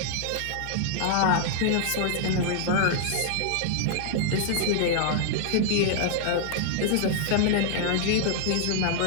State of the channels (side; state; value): both; different; correlation -0.01